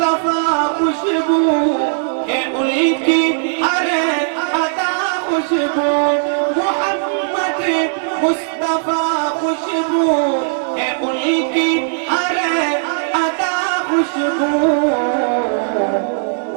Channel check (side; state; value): left; silent; 68 dB below the other